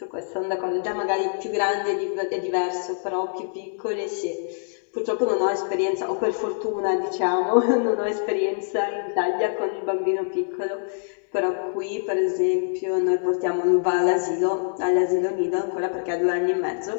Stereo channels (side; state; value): right; silent; digital silence